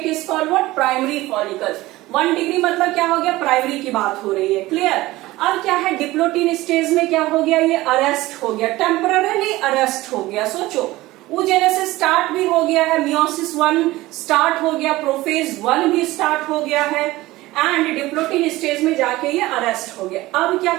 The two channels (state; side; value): quieter; left; 18.4 dB